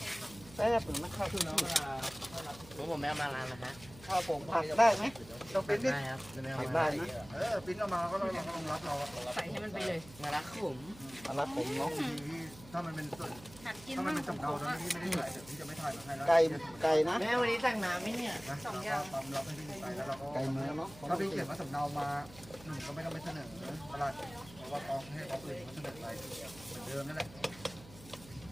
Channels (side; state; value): right; noise; hum, 19 dB below the sound